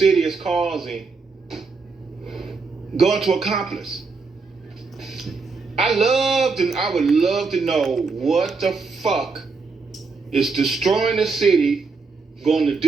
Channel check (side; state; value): left; quieter; 4.4 dB